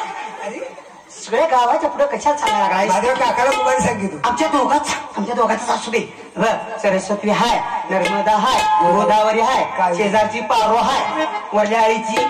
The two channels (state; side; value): identical; both; correlation 1.00